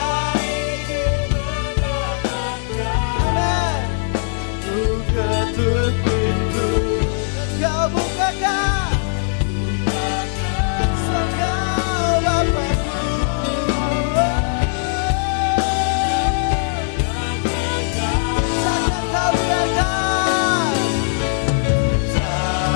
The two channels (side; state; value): right; silent; digital silence